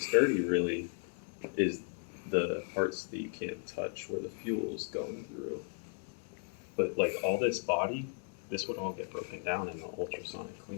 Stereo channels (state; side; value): silent; right; 54 dB below the other